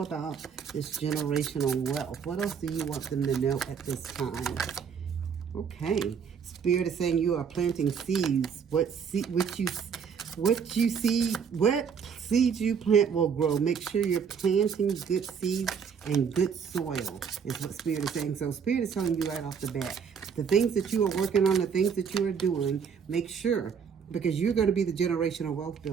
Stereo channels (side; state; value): left; quieter; 6.8 dB